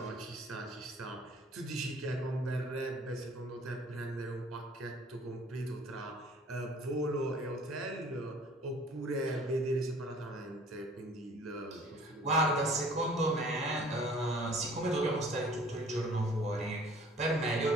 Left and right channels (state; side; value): normal; both; correlation 0.52